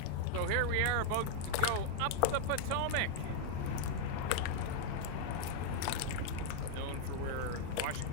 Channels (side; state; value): both; different; correlation -0.01